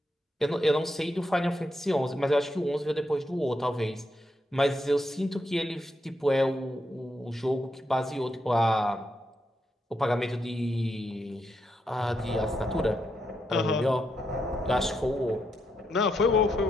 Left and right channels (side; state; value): both; normal; correlation 0.81